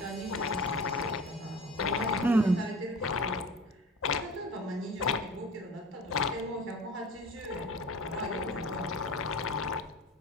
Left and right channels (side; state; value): both; normal; correlation 0.37